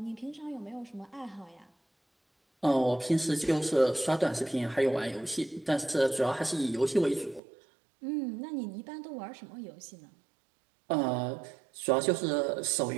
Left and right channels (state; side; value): drops out; left; at 7.4 s